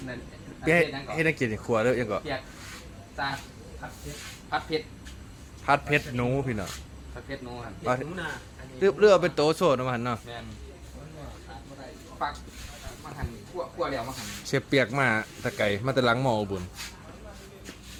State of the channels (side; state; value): both; identical; correlation 1.00